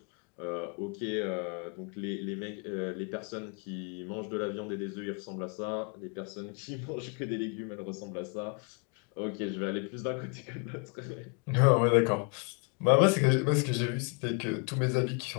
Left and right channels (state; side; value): quieter; right; 36.5 dB